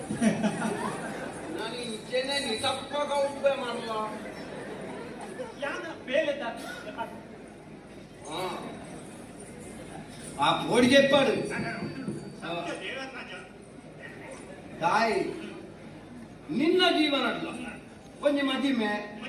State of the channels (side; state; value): both; identical; correlation 1.00